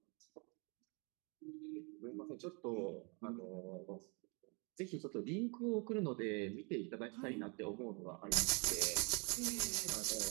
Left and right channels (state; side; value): quieter; left; 32.7 dB